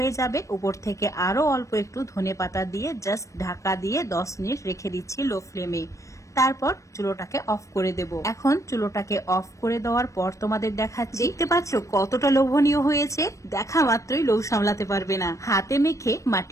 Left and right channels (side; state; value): right; late; 0.15 ms